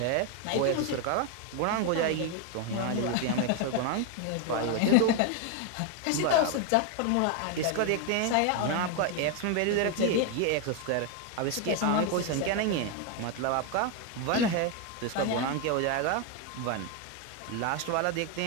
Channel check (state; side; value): different; both; correlation 0.01